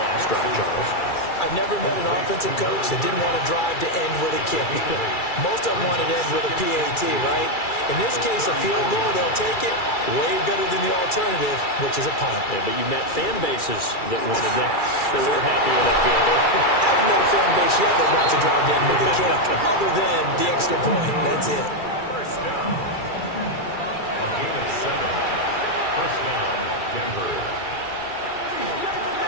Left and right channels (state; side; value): late; right; 2.3 ms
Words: last drive, Charles. I've never met an offensive coach that didn't want to drive to end with a kick. Most of them wanted to end with a PAT, right? In this case, a field goal, they'll take it. Way better than the alternative, which is a punt. Yeah, but you met fan bases that wanted that, that weren't happy with that field goal. I haven't met a fan base yet that wants to drive to end with a kick, other than the extra point. That's it. 1st down. A gain of 7. 1st down, Denver.